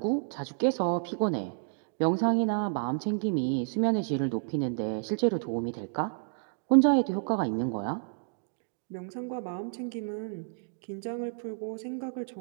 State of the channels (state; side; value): silent; left; digital silence